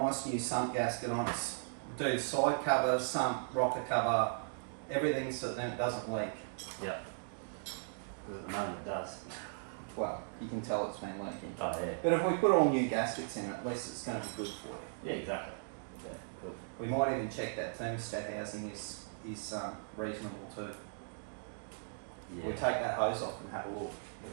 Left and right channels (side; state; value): left; silent; digital silence